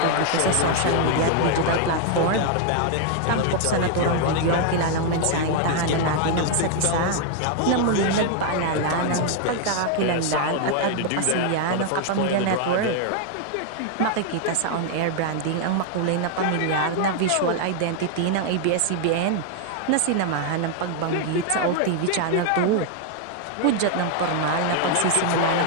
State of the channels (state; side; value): different; both; correlation 0.00